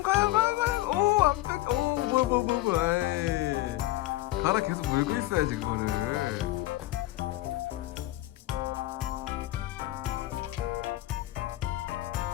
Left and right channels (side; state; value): right; quieter; 16.8 dB